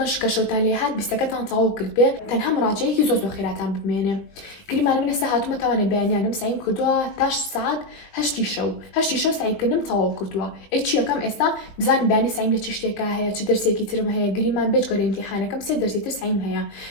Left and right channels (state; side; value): late; right; 20 ms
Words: کە شەوتان لێ هات 20ەکەتان تەواو کرد بێ تەنها مراجعەیەکی زۆر خێراتان بمێنێ گریمان من ئێستا هاتوومە تاوانێ بەیانیانم سعیم کردووە تا ساعت 8 شەو سعیکردنم تەواو کردووە چی یەکەم ئێستا بزانم بانی سعیم لە چ شتێکە هەیە چ دەرسێکی ترم هەیە گریمان بێجگە لە ئیمتیحانەکەم 3 دەرسی تر سعیم هەیە